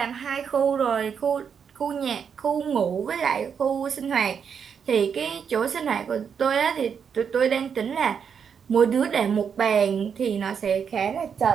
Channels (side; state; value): left; quieter; 7.0 dB